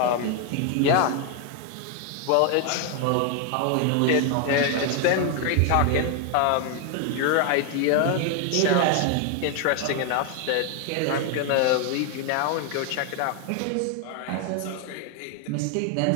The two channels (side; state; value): both; different; correlation 0.01